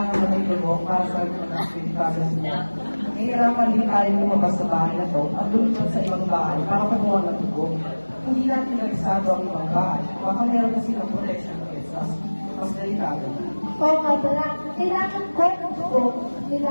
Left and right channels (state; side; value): inverted; both; correlation -1.00